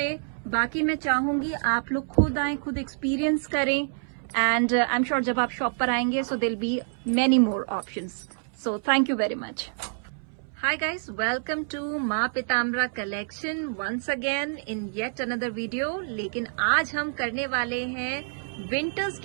बाकी मैं चाहूंगी आप लोग खुद आए, खुद एक्सपीरियंस करें एंड आई एम श्योर जब आप शॉप पर आएंगे so there be many more options. So thank you very much. Hi guys, welcome to Maa Pitambara collection once again in yet another video. लेकिन आज हम करने वाले हैं विंटर्स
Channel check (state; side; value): silent; left; 60 dB below the other